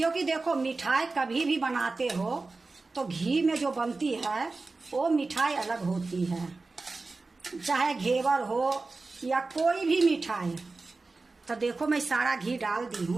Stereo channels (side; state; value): left; quieter; 3.7 dB